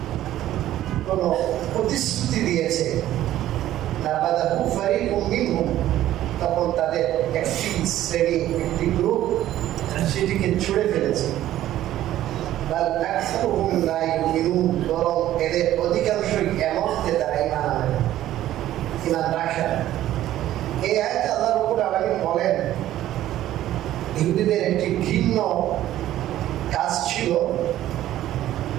কোনো প্রতিশ্রুতি দিয়েছে, নাবাদাহু ফারিকুম মিনহুম, তখন তাদের একটি শ্রেণী, একটি গ্রুপ সেটিকে ছুঁড়ে ফেলেছে। বাল আকসারুহুম লা ইউমিনুন, বরং এদের অধিকাংশই এমন যে তারা ঈমান আনে না, ঈমান রাখে না। এই আয়াতে আল্লাহ রাব্বুল আলামিন বলেন ইহুদিদের একটি ঘৃণ্য কাজ ছিল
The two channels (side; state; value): left; quieter; 13.4 dB